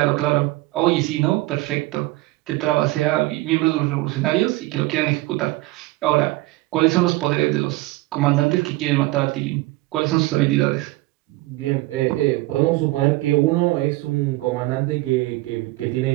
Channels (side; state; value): left; quieter; 19.7 dB